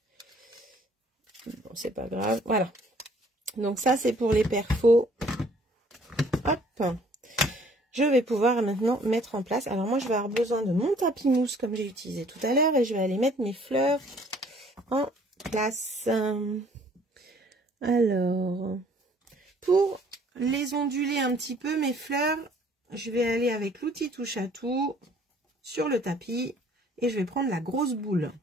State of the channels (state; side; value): normal; both; correlation 0.58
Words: Bon, c'est pas grave. Voilà. Donc ça, c'est pour les perfos. Hop. Je vais pouvoir maintenant mettre en place. Alors moi, je vais avoir besoin de mon tapis mousse comme j'ai utilisé tout à l'heure. Et je vais aller mettre mes fleurs en place. Alors, pour les onduler un petit peu, mes fleurs, je vais aller avec l'outil touche à tout sur le tapis. Et je vais prendre la grosse boule.